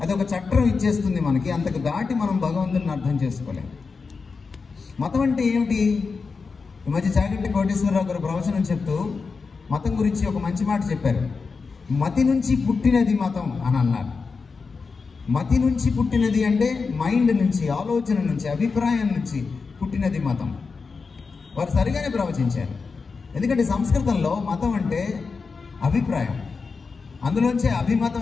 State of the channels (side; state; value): right; quieter; 4.8 dB